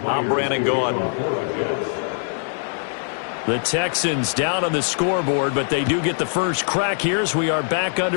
I'm Brandon Gordon. The Texans down on the scoreboard, but they do get the first crack here as we are back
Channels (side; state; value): right; silent; digital silence